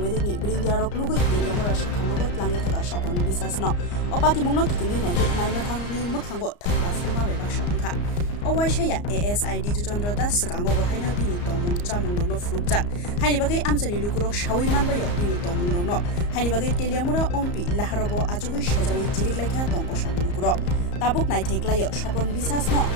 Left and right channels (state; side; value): late; right; 34 ms